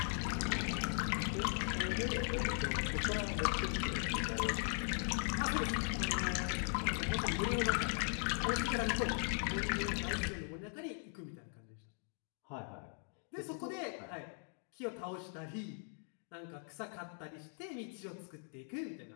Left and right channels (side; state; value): right; silent; 52 dB below the other